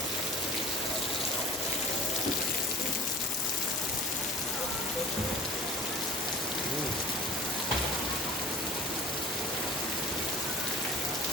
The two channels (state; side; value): normal; both; correlation 0.45